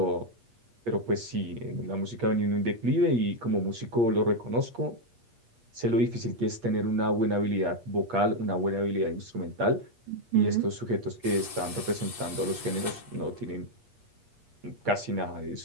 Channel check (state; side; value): late; left; 8.5 ms